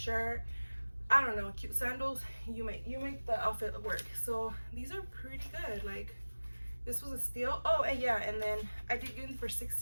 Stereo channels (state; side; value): inverted; both; correlation -1.00